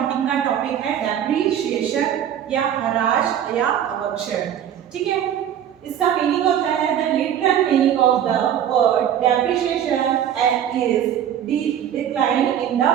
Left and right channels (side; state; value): left; quieter; 9.9 dB